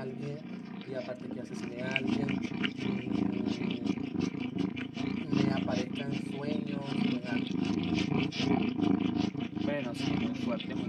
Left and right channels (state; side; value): identical; both; correlation 1.00